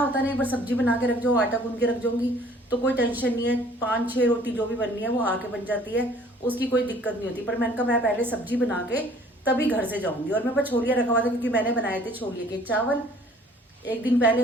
नहीं, एक बार सब्जी बना के रख जाओ, आटा गूंद के रख जाऊंगी तो कोई टेंशन नहीं है। 5-6 रोटी जो भी बननी है वो आके बन जाती है, उसकी कोई दिक्कत नहीं होती। पर मैंने कहा मैं पहले सब्जी बना के तभी घर से जाऊंगी। और मेरे पास छोलिया रखा हुआ था, क्योंकि मैंने बनाए थे छोलिए के चावल एक दिन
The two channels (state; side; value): normal; both; correlation 0.55